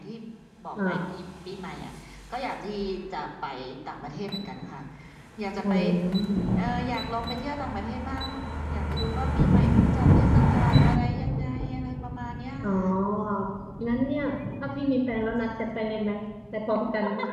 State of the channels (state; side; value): identical; both; correlation 1.00